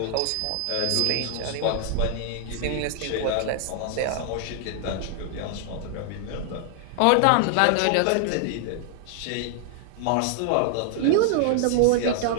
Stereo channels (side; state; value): both; different; correlation 0.00